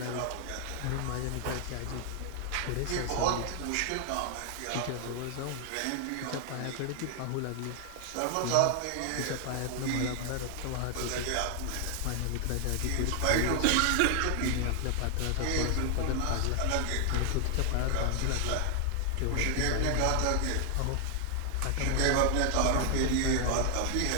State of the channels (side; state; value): both; different; correlation 0.00